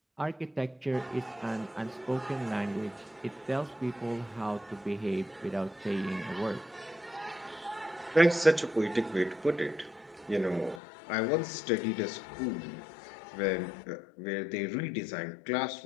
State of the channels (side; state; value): right; drops out; at 10.8 s